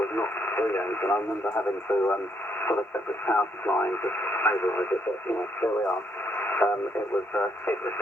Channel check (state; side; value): normal; both; correlation 0.73